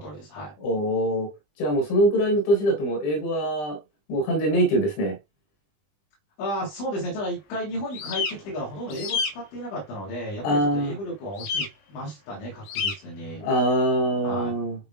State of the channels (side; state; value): right; late; 20 ms